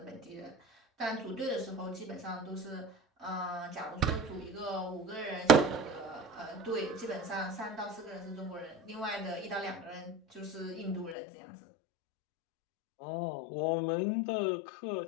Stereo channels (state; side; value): drops out; right; at 11.2 s